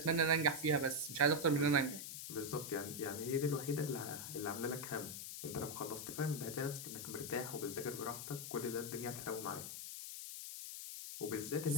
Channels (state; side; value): noise; left; hiss, 7 dB below the sound